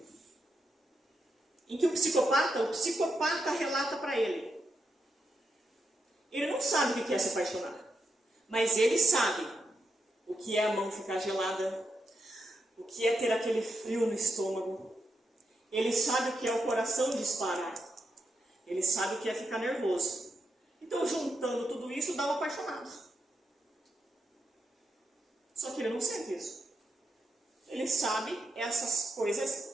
em que o psicopata relata para ele. Ele não sabe o que é se apaixonar, mas ele sabe o que é a mão ficar gelada, o que é ter aquele frio no estômago. Ele sabe o que é o coração disparar. Ele sabe o que é ficar nervoso. Então, juntando tudo isso, dá um apaixonado. Só que ele não sente isso. Ele sabe essas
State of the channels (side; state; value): both; normal; correlation 0.84